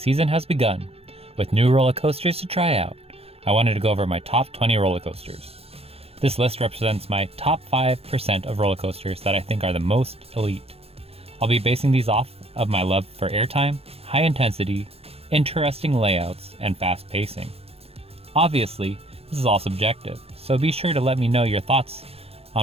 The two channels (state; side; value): late; left; 0.29 ms